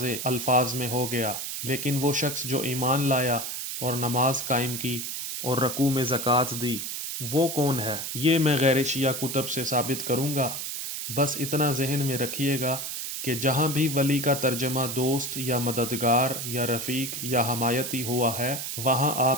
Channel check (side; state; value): right; noise; hiss, 5 dB below the sound